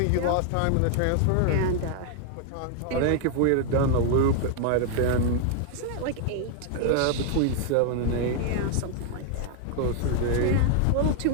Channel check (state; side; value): different; both; correlation 0.00